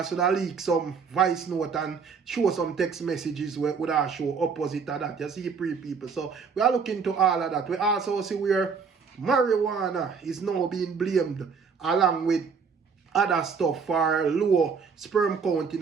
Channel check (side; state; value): left; quieter; 5.7 dB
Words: would have leak some voice note and show some text messages where would have show opposite of that. You see people. So we are looking to all of that. We also see where marijuana is now being blamed along with other stuff for low sperm count in